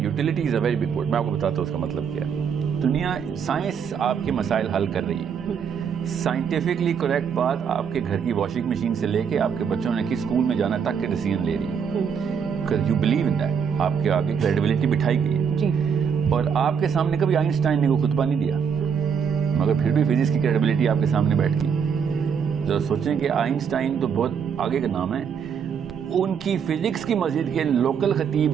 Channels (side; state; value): left; quieter; 7.0 dB